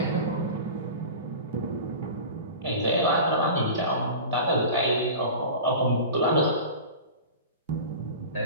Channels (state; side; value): inverted; both; correlation -0.33